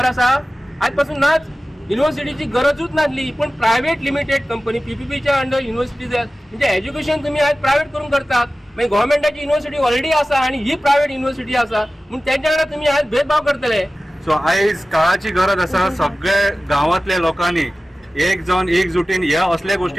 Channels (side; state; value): both; normal; correlation 0.96